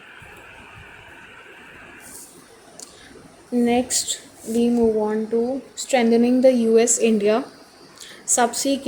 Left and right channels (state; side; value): identical; both; correlation 1.00